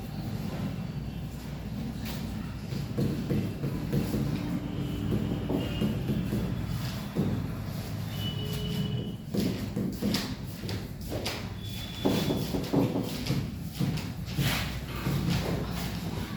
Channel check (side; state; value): both; identical; correlation 1.00